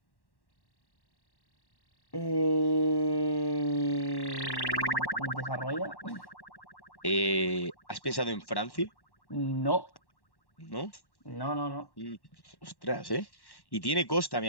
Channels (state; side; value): late; right; 1.1 ms